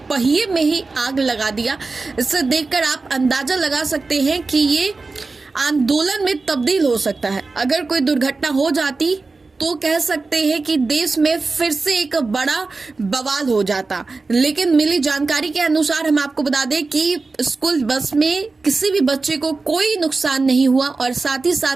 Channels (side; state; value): left; quieter; 3.9 dB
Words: पहिए में ही आग लगा दिया, इससे देखकर आप अंदाजा लगा सकते हैं कि ये आंदोलन में तब्दील हो सकता है। अगर कोई दुर्घटना हो जाती तो कह सकते हैं कि देश में फिर से एक बड़ा बवाल हो जाता। लेकिन मिली जानकारी के अनुसार हम आपको बता दें कि स्कूल बस में किसी भी बच्चे को कोई नुकसान नहीं हुआ और साथ ही